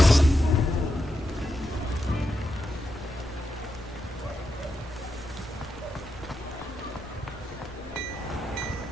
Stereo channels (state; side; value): normal; both; correlation 0.85